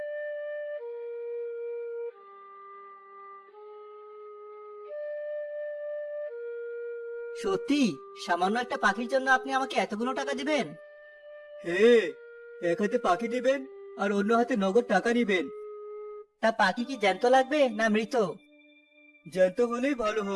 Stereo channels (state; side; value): identical; both; correlation 1.00